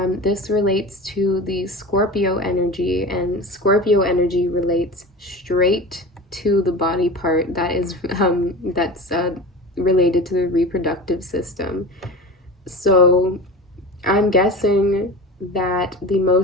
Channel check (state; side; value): normal; both; correlation 0.32